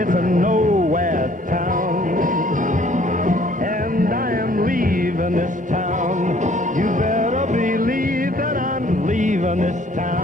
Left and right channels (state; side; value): normal; both; correlation 0.58